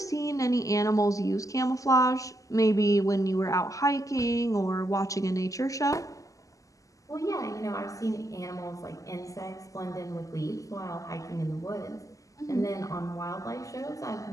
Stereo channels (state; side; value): late; right; 0.16 ms